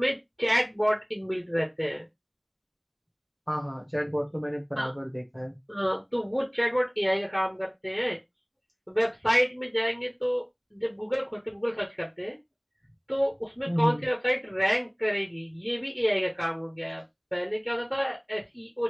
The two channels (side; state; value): both; identical; correlation 1.00